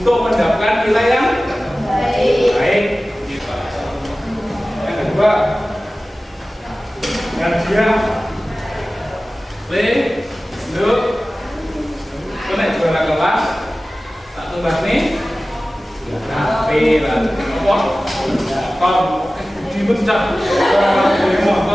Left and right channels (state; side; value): normal; both; correlation 0.96